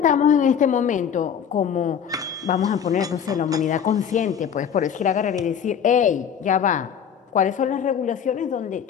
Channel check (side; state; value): right; quieter; 8.0 dB